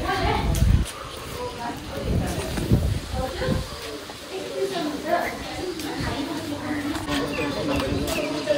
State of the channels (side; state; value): both; identical; correlation 1.00